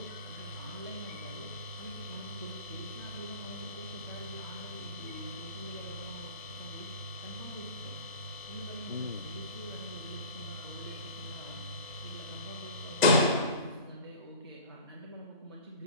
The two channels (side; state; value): both; inverted; correlation -0.38